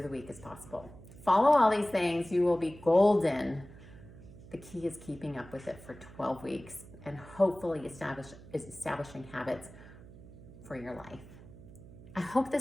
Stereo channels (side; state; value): right; noise; hum, 18 dB below the sound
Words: the week as possible. Follow all these things, you will be golden. The key is keeping up with it for 12 weeks and hopefully establishing habits for your life. I hope